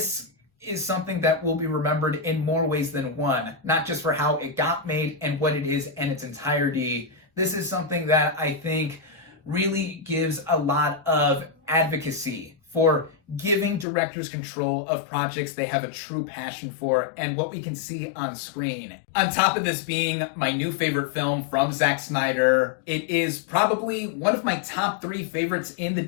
is something that will be remembered in more ways than one, not just for how it got made and what it is in its entirety. This is something that I think really gives a lot of advocacy for giving directors control of projects they have a true passion for and what we can see on screen. On top of this being my new favorite film from Zack Snyder, it is probably one of my top 3 favorites in the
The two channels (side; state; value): right; drops out; at 13.9 s